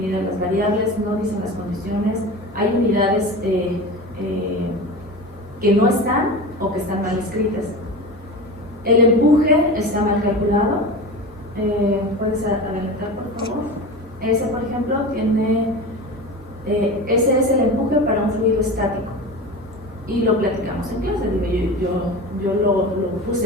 las variables, no dicen las condiciones, hay unidades que no están o que están mal escritas. El empuje está mal calculado. ¿Puedes adelantar, por favor? Ese, por ejemplo, tiene... ese es el empuje para un fluido estático. Y lo platicamos en clase. Digo, yo lo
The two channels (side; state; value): both; normal; correlation 0.29